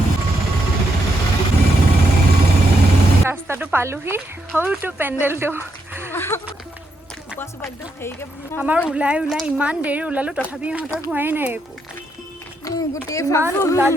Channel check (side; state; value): both; normal; correlation 0.79